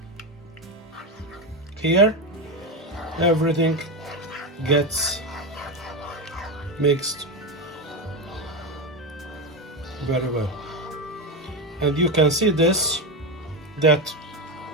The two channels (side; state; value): both; normal; correlation 0.15